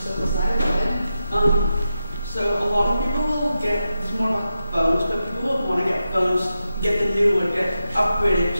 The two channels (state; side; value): inverted; both; correlation -0.89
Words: go ahead. So a lot of people will it's more about phones, but people will want to get phones, get the new one, get upgraded,